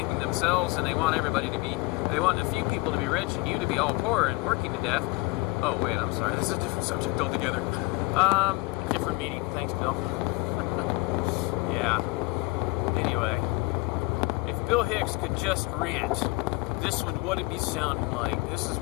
themselves, and they want a few people to be rich and you to be all poor and working to death. Oh wait, I'm sorry, this is a different subject altogether. Different meeting, thanks Bill. Yeah. Anyway, if Bill Hicks could just rant, this is what it would sound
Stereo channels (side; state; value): right; quieter; 24.1 dB